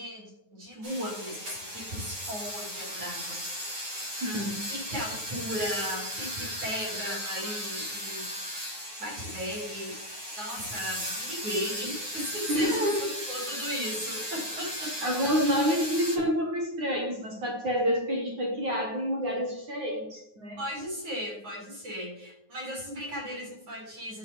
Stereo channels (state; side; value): late; left; 9.5 ms